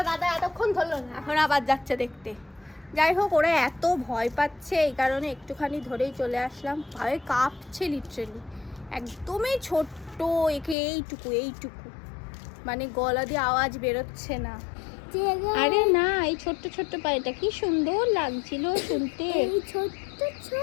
দাদা এতক্ষণ ধরলো না, এখন আবার যাচ্ছে দেখতে। যাই হোক, ওরা এত ভয় পাচ্ছে এই কারণে একটুখানি ধরেই চলে আসলাম। ভয়ে কাঁপছে লিটারেলি, একদমই ছোট্ট, একে এইটুকু, মানে গলা দিয়ে আওয়াজ বেরোচ্ছে না। আরে না, এই ছোট্ট ছোট্ট পায়েটা কি সুন্দর লাগছিল শুনতে। ছোট্ট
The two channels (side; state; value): right; drops out; at 10.8 s